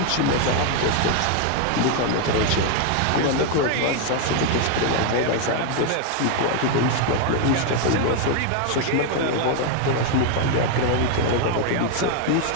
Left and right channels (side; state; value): both; different; correlation 0.01